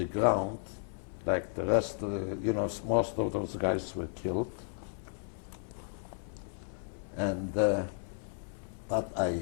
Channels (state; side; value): silent; right; 55 dB below the other